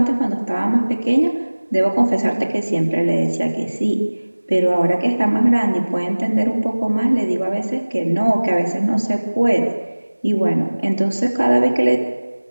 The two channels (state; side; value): inverted; both; correlation -1.00